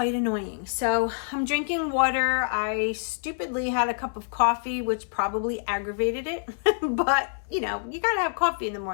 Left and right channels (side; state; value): right; silent; digital silence